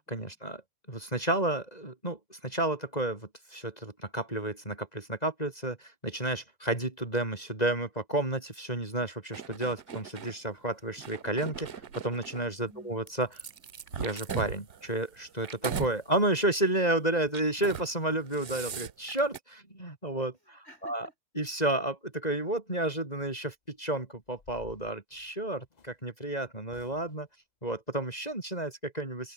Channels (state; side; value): late; right; 1.9 ms